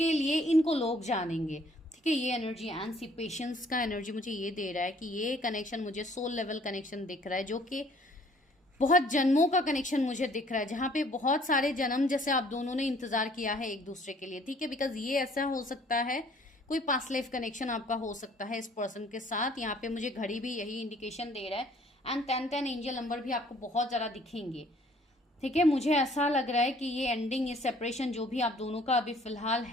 लिए इनको लोग जानेंगे। ठीक है, ये एनर्जी एंड पेशेंस का एनर्जी मुझे ये दे रहा है कि ये कनेक्शन मुझे सोल लेवल कनेक्शन दिख रहा है, जो कि बहुत जन्मों का कनेक्शन मुझे दिख रहा है, जहां पे बहुत सारे जन्म जैसे आप दोनों ने इंतजार किया है एक दूसरे के लिए। ठीक है, बिकॉज ये ऐसा हो सकता है, कोई पास्ट लाइफ कनेक्शन आपका हो सकता है इस पर्सन के साथ। यहाँ पे मुझे घड़ी भी यही इंडिकेशन दे रहा है, एंड 1010 एंजल नंबर भी आपको बहुत ज्यादा दिखेंगे। ठीक है, मुझे ऐसा लग रहा है कि ये एंडिंग, ये सेपरेशन जो भी आप दोनों का अभी फिलहाल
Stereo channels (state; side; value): normal; both; correlation 0.58